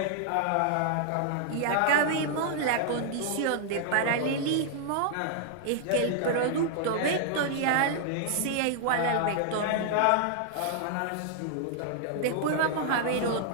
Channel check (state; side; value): different; both; correlation -0.01